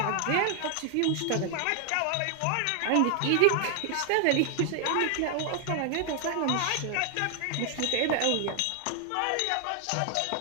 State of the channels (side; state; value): both; different; correlation 0.00